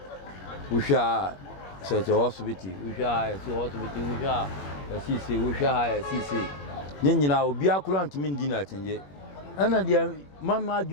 Usha se hospital, usha se hospital, usha sisi, usha sisi. Nyina obi akura ntimi ndi na atenje. Ana dia mama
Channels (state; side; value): late; right; 21 ms